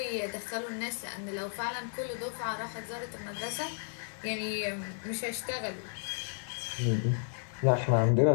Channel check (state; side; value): silent; right; 56 dB below the other